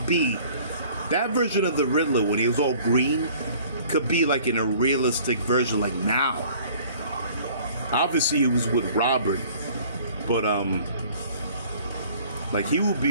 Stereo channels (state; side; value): inverted; both; correlation -0.52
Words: be that version of the Riddler when he was all green. Could be like in a realistic version, like now. Obviously, he was with Robert, but like he would